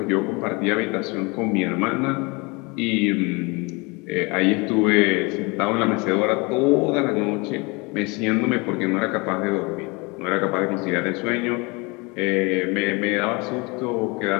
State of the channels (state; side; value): quieter; right; 27.7 dB